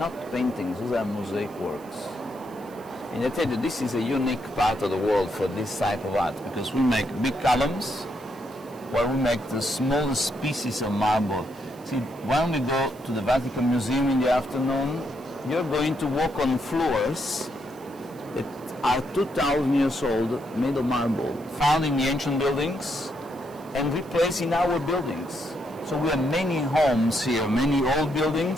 paintings, those are mosaic works. And I tell you, this is a unique part of the world for this type of art, because we make big columns, while we make the smallest pieces of marble. See, when we go to the Vatican Museum in the afternoon, you're going to walk on floors that are 2,000 years old, made of marble, found in the ancient buildings and replaced in our buildings. So we have many homes here, many old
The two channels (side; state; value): right; noise; hiss, 25 dB below the sound